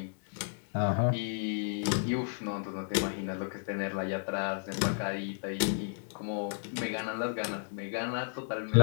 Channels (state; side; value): silent; right; digital silence